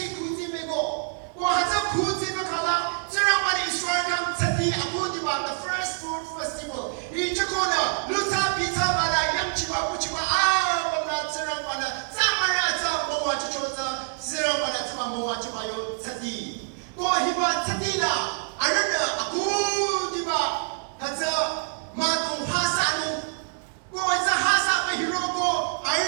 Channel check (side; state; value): left; silent; digital silence